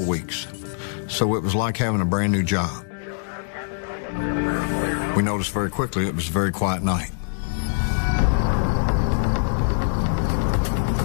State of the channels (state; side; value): silent; right; digital silence